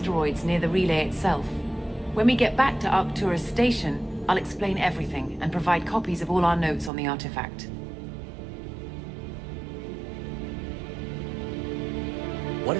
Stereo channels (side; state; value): left; drops out; at 6.9 s